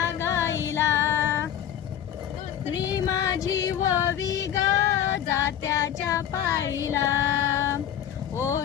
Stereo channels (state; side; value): quieter; right; 10.2 dB